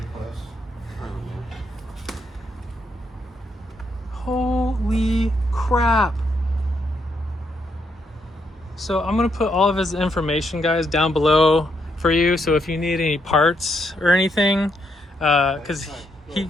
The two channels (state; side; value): normal; both; correlation 0.77